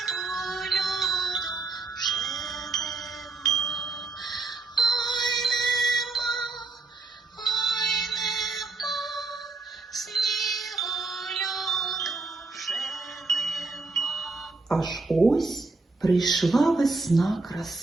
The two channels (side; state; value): left; quieter; 3.7 dB